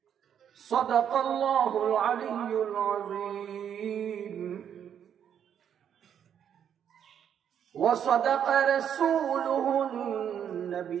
صدق الله العلي العظيم وصدق رسوله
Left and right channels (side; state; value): left; quieter; 8.8 dB